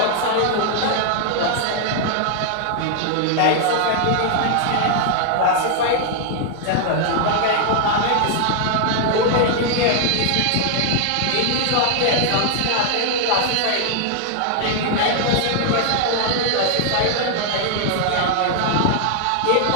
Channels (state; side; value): different; both; correlation 0.00